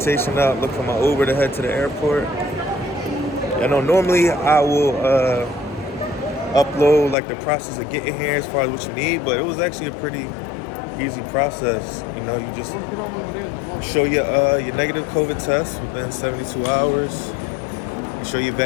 out, look for my Uber to head to the airport. I know normally I will upload like the process of getting here as far as what you need, but it was actually a pretty easy process. You know, you just show your negative COVID test within 72 hours. You show your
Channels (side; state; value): right; drops out; at 7.2 s